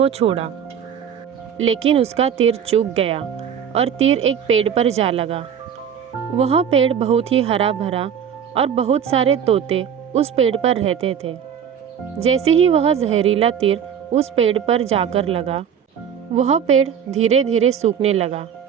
छोड़ा। लेकिन उसका तीर चूक गया और तीर एक पेड़ पर जा लगा। वह पेड़ बहुत ही हरा भरा और बहुत सारे तोते उस पेड़ पर रहते थे। जैसे ही वह जहरीला तीर उस पेड़ पर जाकर लगा, वह पेड़ धीरे धीरे सूखने लगा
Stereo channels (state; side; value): quieter; left; 8.2 dB